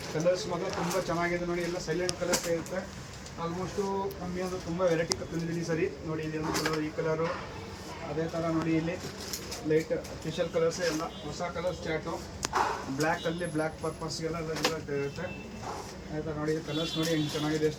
ಕಲರ್ಸ್ ಮಾತ್ರ ತುಂಬ ಚೆನ್ನಾಗಿದೆ ನೋಡಿ. ಎಲ್ಲ ಸೈಲೆಂಟ್ ಕಲರ್ಸ್ ಇರುತ್ತೆ. ಆಲ್ಮೋಸ್ಟು ಕಮ್ಮಿ ಅಂದರೆ ತುಂಬ ವೆರೈಟಿ ತಂದಿದ್ದೀನಿ ಸರಿ ನೋಡಿ. ಇಲ್ಲಿ ಒಂದು ಕಲರ್, ಈ ಕಲರು, ಅದೇ ಥರ ನೋಡಿ ಇಲ್ಲಿ ಲೈಟ್ ಸ್ಪೆಷಲ್ ಕಲರ್ಸ್ ಎಲ್ಲ ಹೊಸ ಕಲರ್ಸ್ ಚಾಟು. ಬ್ಲ್ಯಾಕಲ್ಲಿ ಬ್ಲ್ಯಾಕ್ ಪರ್ಪಸ್ಗೆಲ್ಲ ಇರುತ್ತೆ. ಆಯಿತಾ ನೋಡಿ ಕಲರ್ಸ್ ನೋಡಿ ಹೆಂಗೆ ಚೆನ್ನಾಗಿದೆ,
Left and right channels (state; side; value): identical; both; correlation 1.00